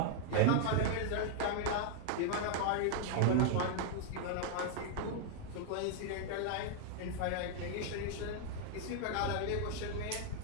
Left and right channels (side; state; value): both; different; correlation 0.00